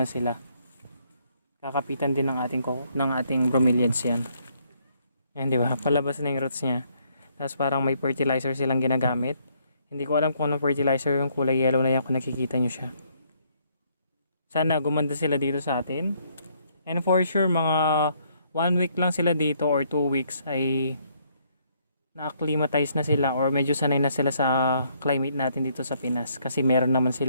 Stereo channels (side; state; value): both; inverted; correlation -0.69